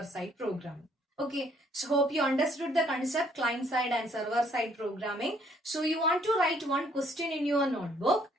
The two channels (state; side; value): normal; both; correlation 0.64